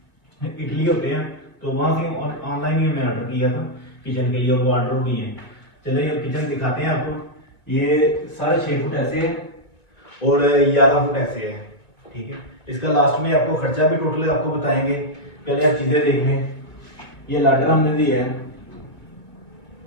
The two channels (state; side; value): late; right; 1.9 ms